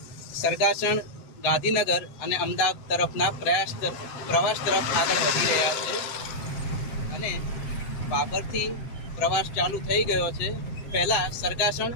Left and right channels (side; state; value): right; late; 8.1 ms